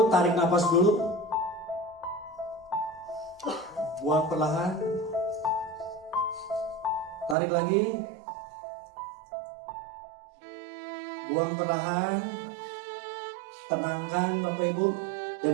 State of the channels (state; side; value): drops out; left; at 7.4 s